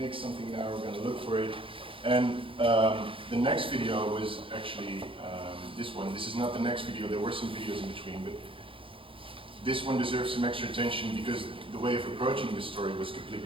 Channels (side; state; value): left; late; 0.26 ms